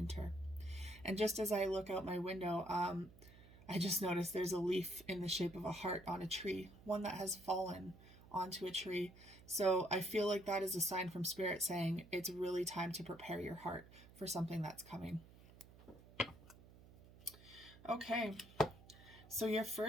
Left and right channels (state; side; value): noise; right; hum, 21 dB below the sound